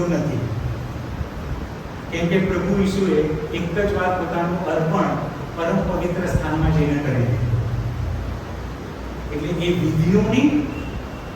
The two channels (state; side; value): identical; both; correlation 1.00